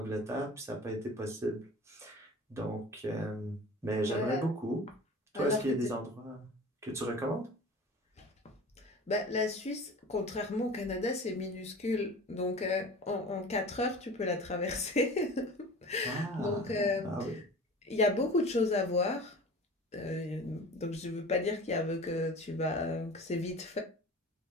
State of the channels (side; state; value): both; normal; correlation 0.39